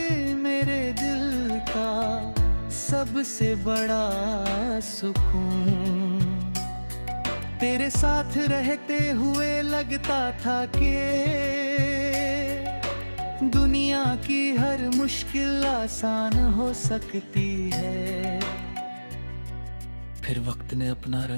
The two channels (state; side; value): inverted; both; correlation -1.00